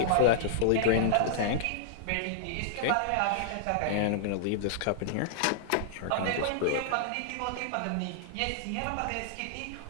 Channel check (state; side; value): different; both; correlation -0.01